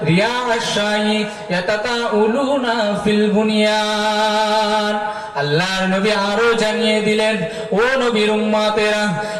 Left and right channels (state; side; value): identical; both; correlation 1.00